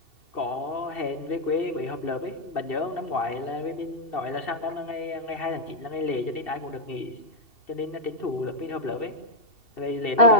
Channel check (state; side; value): late; right; 2.7 ms